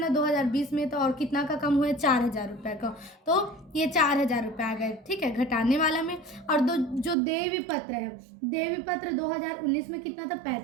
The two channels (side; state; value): left; drops out; at 7.2 s